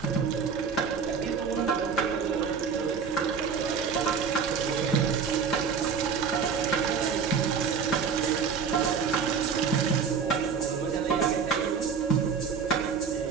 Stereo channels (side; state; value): left; quieter; 6.1 dB